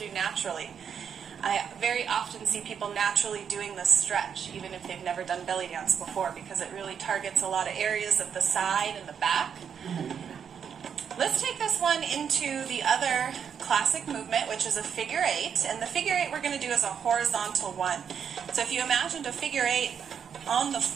naturally. I very often see people naturally doing this stretch, even if they've never done belly dance before, because it really targets a lot of areas of the side and the back. Let's take this one into the other classic movement, which is a figure eight. And the figure eight we're going to do is a horizontal one. So if you imagined a figure eight on the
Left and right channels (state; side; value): quieter; left; 7.5 dB